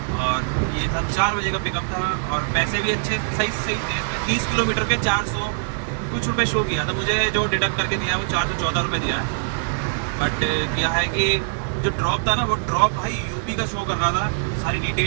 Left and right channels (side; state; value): left; silent; 64 dB below the other